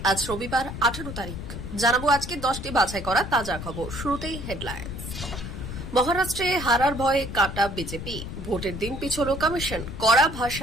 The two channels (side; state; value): left; noise; rumble, 8 dB below the sound